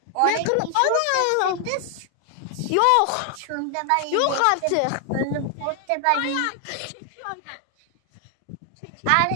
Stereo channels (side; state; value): both; different; correlation 0.00